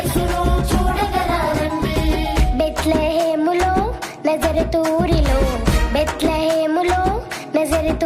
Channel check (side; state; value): both; identical; correlation 1.00